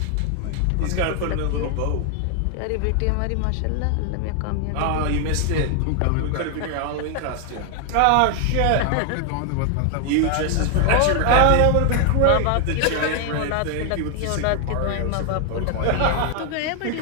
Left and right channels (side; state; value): both; different; correlation 0.00